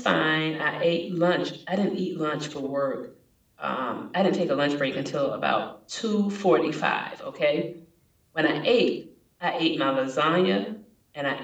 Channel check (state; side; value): identical; both; correlation 1.00